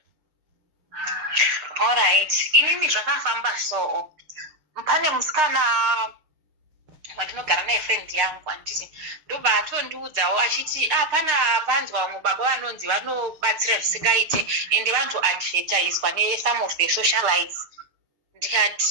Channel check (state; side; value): late; left; 6.5 ms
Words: Alright. Inini zvakafamba so. Pane musikana wandinogara naye friend yangu anditi ndobva atondiudzawo achiti pana panzwa vamwe baba vanonzi vanobatsira zvisingaite ende vantu advertiswa ne-some of the socialites.